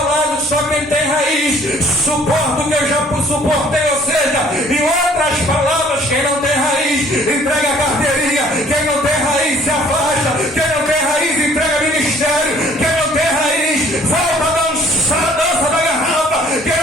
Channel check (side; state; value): both; normal; correlation 0.57